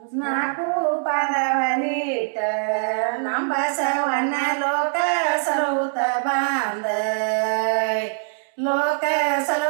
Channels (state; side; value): silent; left; digital silence